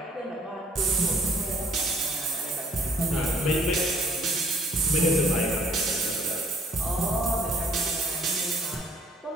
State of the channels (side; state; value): both; normal; correlation 0.60